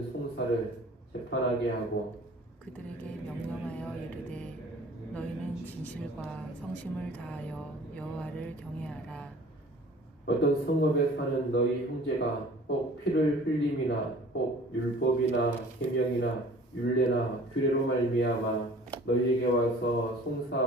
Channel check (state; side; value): normal; both; correlation 0.49